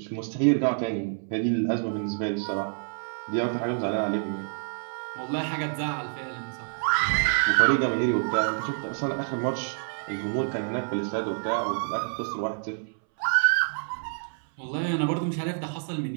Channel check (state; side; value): silent; left; 60 dB below the other